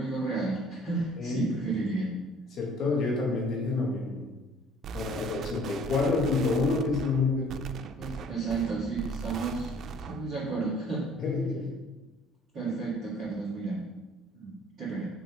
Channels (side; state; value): both; normal; correlation 0.55